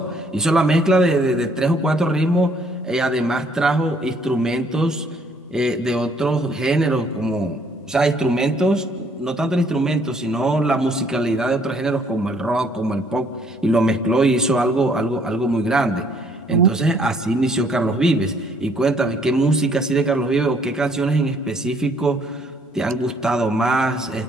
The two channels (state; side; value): normal; both; correlation 0.64